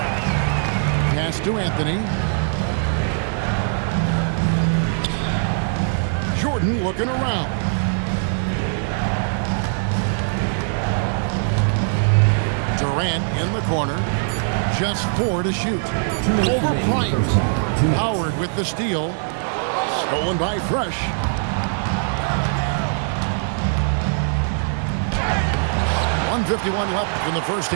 Pass to Anthony. Jordan looking around. Durant in the corner. Just 4 to shoot. Over Bryant. Howard with the steal. Stolen by Fresh. .151 left in the first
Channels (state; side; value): silent; left; digital silence